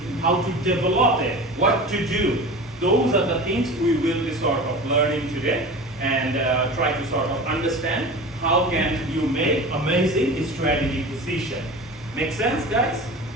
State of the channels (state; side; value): normal; both; correlation 0.34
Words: how to develop it, what to do. Those are the things we will be sort of learning today, and try to sort of understand how can you make amazing strategic decision. Make sense, guys?